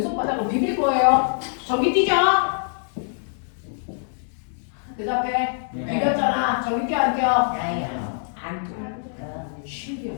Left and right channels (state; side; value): silent; right; 61 dB below the other